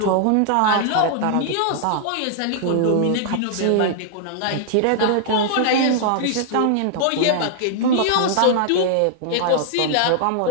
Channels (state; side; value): different; both; correlation 0.00